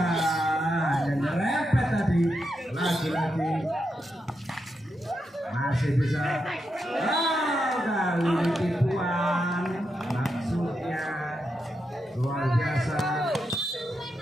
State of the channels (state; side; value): normal; both; correlation 0.85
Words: yang nyerempet tadi. Lagi-lagi masih bisa. Kali ini tipuan. Maksudnya luar biasa.